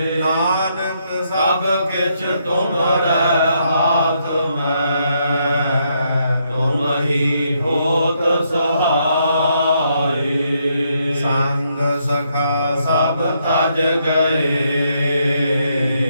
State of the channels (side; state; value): both; inverted; correlation -0.76